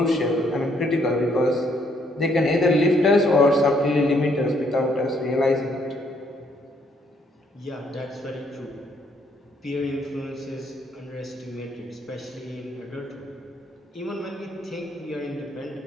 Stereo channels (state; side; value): normal; both; correlation 0.69